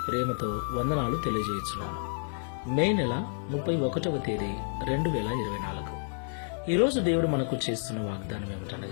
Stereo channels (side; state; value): right; silent; 58 dB below the other